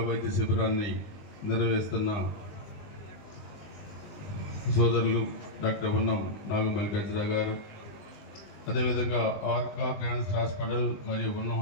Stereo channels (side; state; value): right; late; 20 ms